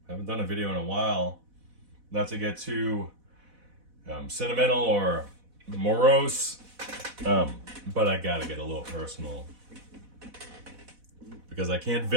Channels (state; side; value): late; left; 4.1 ms